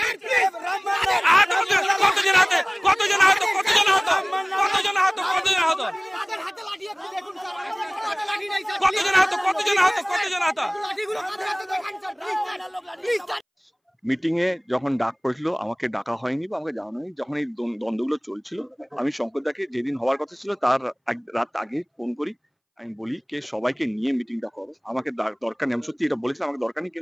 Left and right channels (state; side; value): identical; both; correlation 1.00